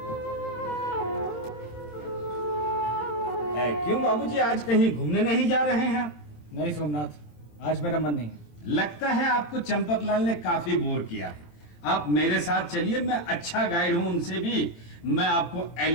क्यों बाबूजी, आज कहीं घूमने नहीं जा रहे हैं? नहीं सोमनाथ, आज मेरा मन नहीं है। लगता है आपको चंपकलाल ने काफी बोर किया है। आप मेरे साथ चलिए, मैं अच्छा गाइड हूं उनसे भी। मैं आपको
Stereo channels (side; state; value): right; late; 17 ms